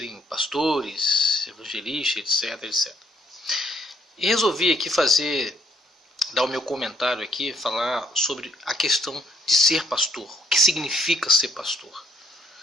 pastores, evangelistas, etc. E resolvi aqui dar o meu comentário aqui, falar sobre a questão de ser pastor. O que significa ser pastor?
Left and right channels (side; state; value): both; normal; correlation 0.68